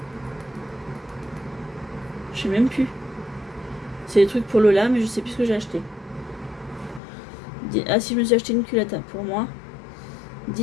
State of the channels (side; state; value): right; drops out; at 7.0 s